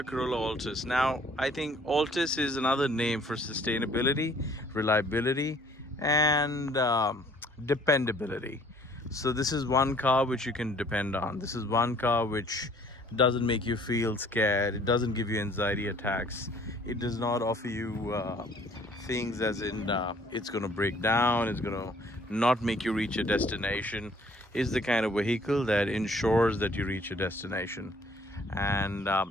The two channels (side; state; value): both; normal; correlation 0.57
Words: Corolla Altis. Now, I think Altis is another name for sustainability, reliability, and dependability. So this is one car which you can depend on. This is one car which doesn't make you feel scared. It doesn't give you anxiety attacks. It does not offer you things as in it's going to break down, it's going to not make you reach a destination. Is the kind of vehicle that ensures that you reach a destination. And